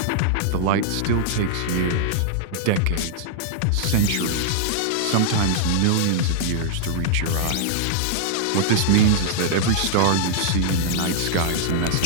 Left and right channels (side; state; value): both; different; correlation -0.01